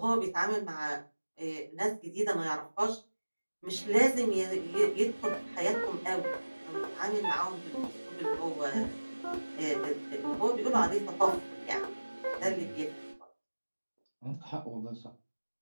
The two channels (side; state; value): both; inverted; correlation -1.00